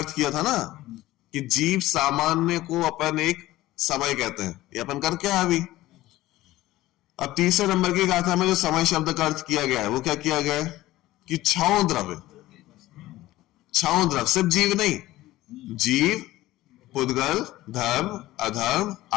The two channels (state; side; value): quieter; right; 16.6 dB